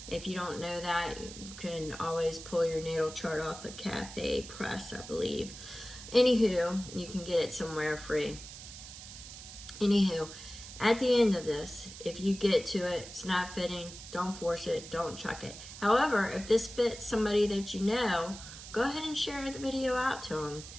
If you don't know that, you can always pull your natal chart off the Cafe Press, I believe. Anywho, you can get it somewhere free. Anywho, at the end of this, if you get to it, it's not fitting, don't force it, don't chuck it. However, if this fits somebody that you know, go ahead and share the video out to them.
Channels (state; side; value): noise; right; hiss, 13 dB below the sound